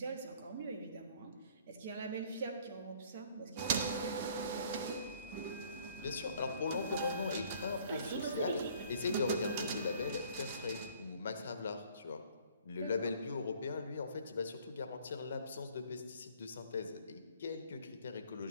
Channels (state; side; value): inverted; both; correlation -0.56